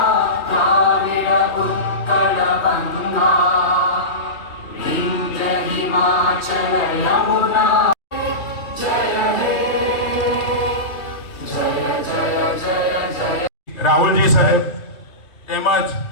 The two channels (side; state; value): right; late; 3.2 ms